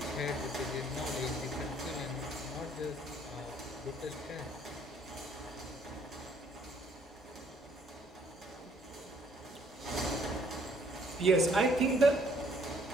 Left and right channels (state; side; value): normal; both; correlation 0.63